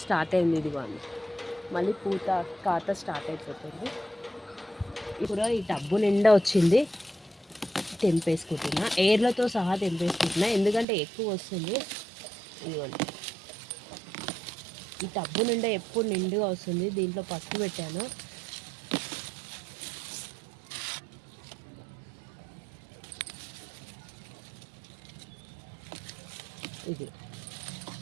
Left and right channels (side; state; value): left; drops out; at 10.9 s